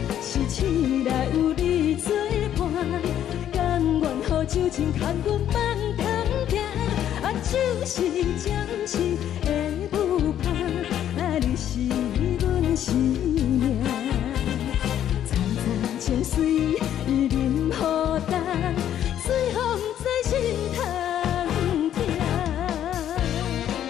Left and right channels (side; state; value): right; quieter; 10.7 dB